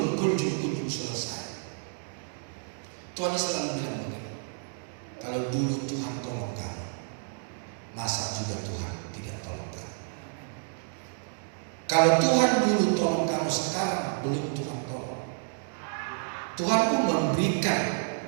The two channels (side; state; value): left; silent; digital silence